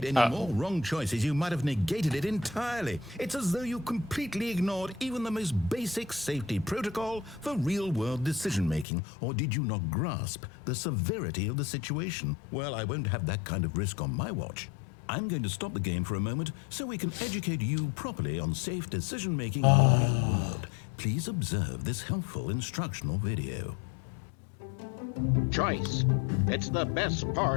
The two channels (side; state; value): right; drops out; at 8.8 s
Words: any more wrong choices, you might have negated it entirely. It's as though you completely ignored even the most basic safety protocol for real-world decision-making. Or did you not grasp the severity of the situation? Well, I won't have that kind of risk on my watch. I'm going to stop the game for a moment so we can educate you properly on safe decision-making in the real world. Please observe this helpful instructional video. Choice. It's the best